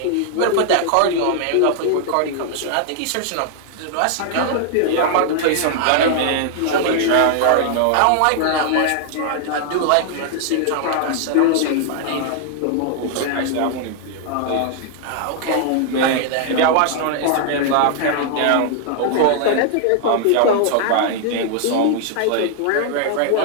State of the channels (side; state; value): both; different; correlation 0.00